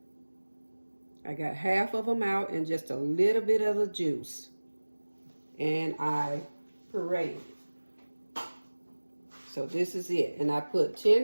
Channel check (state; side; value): inverted; both; correlation -1.00